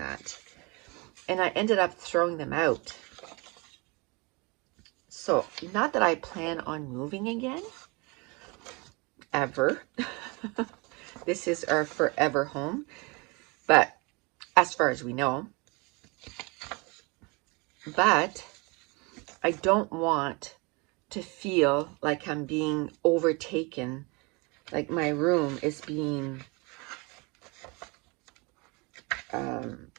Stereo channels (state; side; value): quieter; left; 28.4 dB